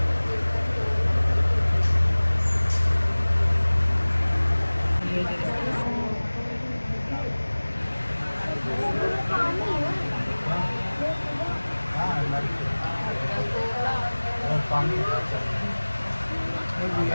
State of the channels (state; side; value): inverted; both; correlation -1.00